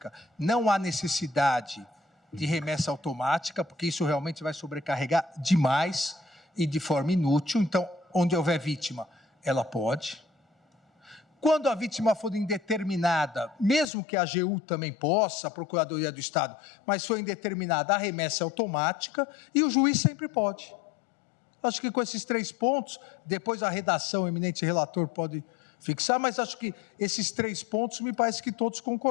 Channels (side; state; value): right; drops out; at 13.9 s